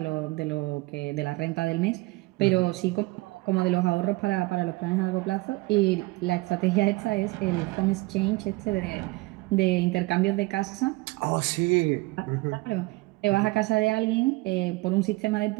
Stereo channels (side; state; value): left; quieter; 22.5 dB